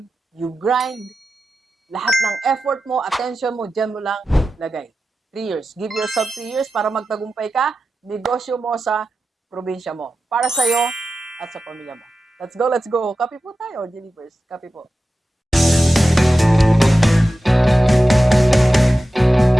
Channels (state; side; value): normal; both; correlation 0.93